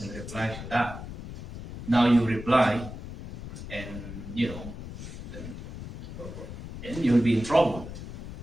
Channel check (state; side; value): noise; left; rumble, 10 dB below the sound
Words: and reply to that. Now you reply, and then you'll be in trouble,